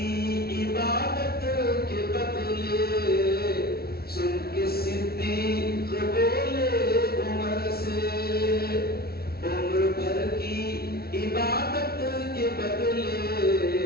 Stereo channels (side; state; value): right; late; 0.45 ms